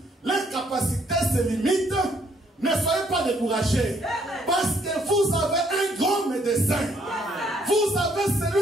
leurs capacités se limitent, ne soyez pas découragés. Parce que vous avez un grand médecin. Vous avez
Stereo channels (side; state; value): both; normal; correlation 0.68